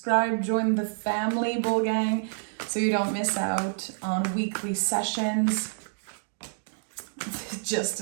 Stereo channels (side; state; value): left; silent; digital silence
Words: join the family, Bull Gang, so you don't miss out on weekly sessions.